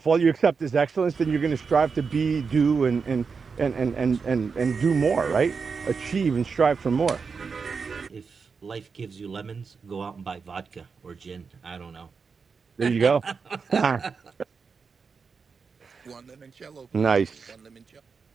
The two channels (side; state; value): left; quieter; 5.3 dB